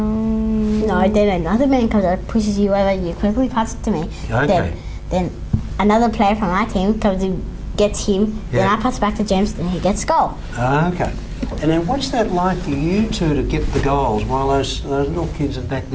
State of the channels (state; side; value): identical; both; correlation 1.00